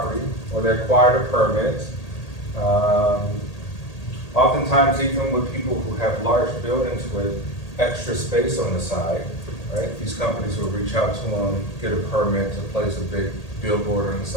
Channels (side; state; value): right; late; 1.8 ms